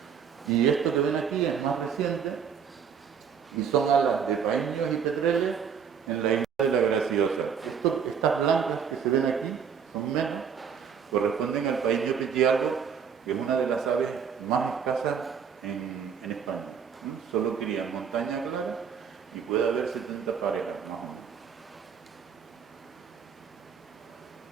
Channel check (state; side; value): quieter; left; 7.2 dB